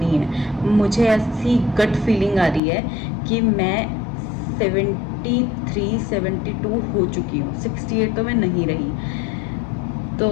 है। मुझे ऐसी गट फीलिंग आ रही है कि मैं 73-72 हो चुकी हूँ, 68 तो मैं नहीं रही।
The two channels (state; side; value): drops out; right; at 2.6 s